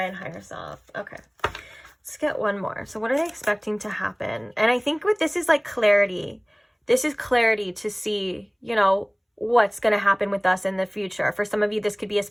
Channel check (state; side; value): identical; both; correlation 1.00